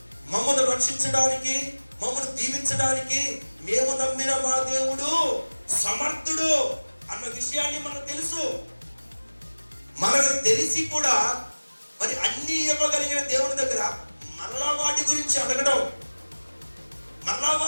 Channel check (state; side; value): inverted; both; correlation -1.00